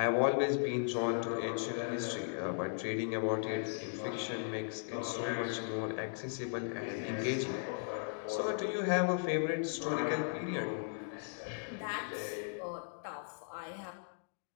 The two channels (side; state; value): right; silent; digital silence